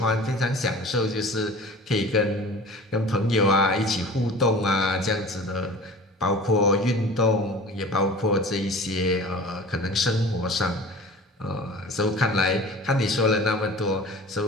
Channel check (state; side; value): normal; both; correlation 0.41